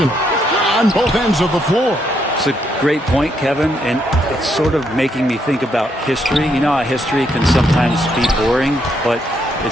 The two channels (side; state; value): both; normal; correlation 0.75